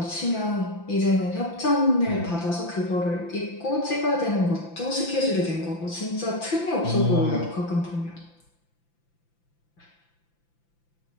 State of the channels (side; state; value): right; late; 5.9 ms